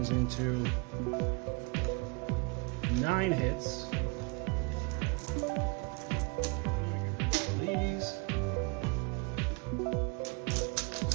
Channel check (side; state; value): left; quieter; 28.9 dB